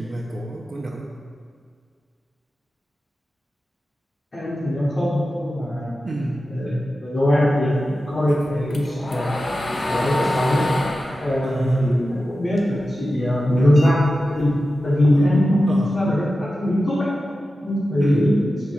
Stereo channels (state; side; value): normal; both; correlation 0.93